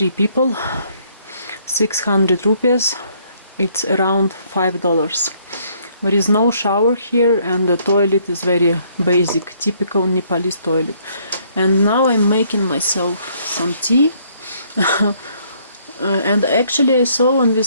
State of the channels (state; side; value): inverted; both; correlation -0.66